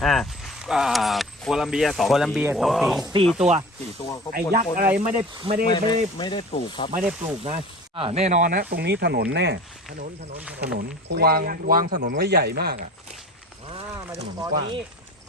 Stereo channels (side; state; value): both; normal; correlation 0.38